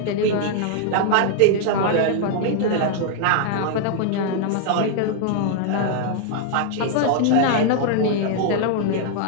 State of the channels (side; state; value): both; different; correlation 0.00